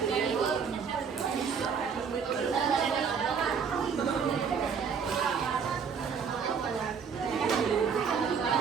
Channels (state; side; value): quieter; left; 6.4 dB